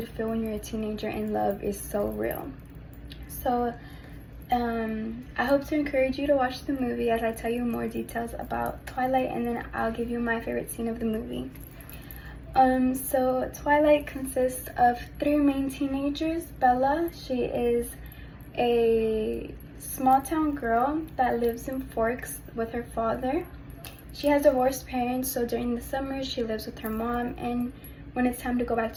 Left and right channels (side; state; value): both; identical; correlation 1.00